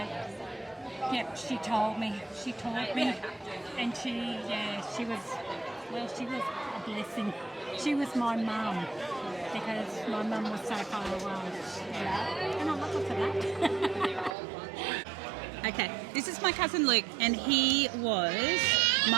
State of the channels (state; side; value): drops out; left; at 14.3 s